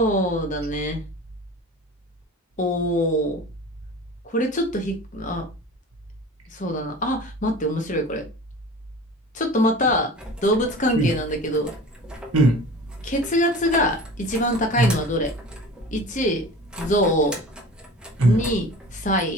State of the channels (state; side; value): normal; both; correlation 0.38